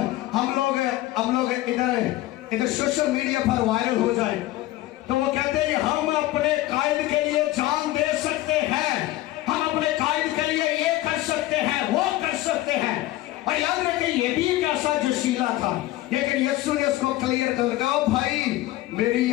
हम लोग इधर सोशल मीडिया पर वायरल हो जाए, तो वो कहते हैं हम अपने कायद के लिए जान दे सकते हैं, हम अपने कायद के लिए ये कर सकते हैं, वो कर सकते हैं। और याद रखें ये भी एक ऐसा जोशीला था, लेकिन यीशु ने उसको क्लियर कर दिया, भाई मेरी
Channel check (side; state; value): right; quieter; 16.4 dB